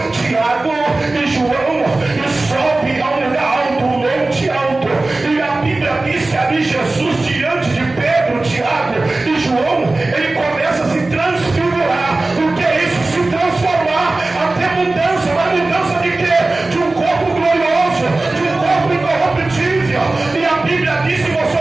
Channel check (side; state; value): left; quieter; 3.1 dB